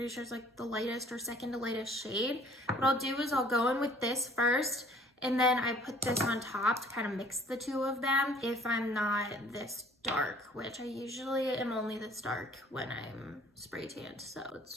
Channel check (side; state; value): both; normal; correlation 0.55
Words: sure is like the lightest or second to lightest shade. What I'll do is I'll go in with this first, and then I put this on top to kind of mix the two of them if I'm not this dark, which I usually am only this dark when I'm spray tanned. So